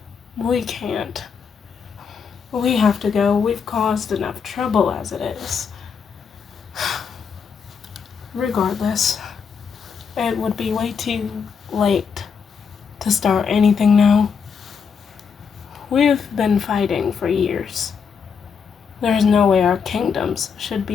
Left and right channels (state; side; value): quieter; right; 6.2 dB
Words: We can't. We have to go. We've caused enough trouble as it is. Regardless, it would be way too late to start anything now. We've been fighting for years. There's no way our kingdoms should